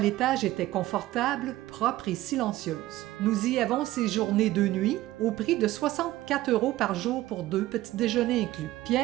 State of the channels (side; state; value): left; quieter; 16.1 dB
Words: était confortable, propre et silencieuse. Nous y avons séjourné 2 nuits, au prix de 64 € par jour pour 2, petit déjeuner inclus.